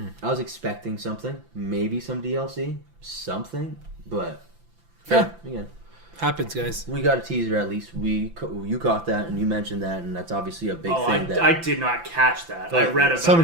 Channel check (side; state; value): left; late; 5.9 ms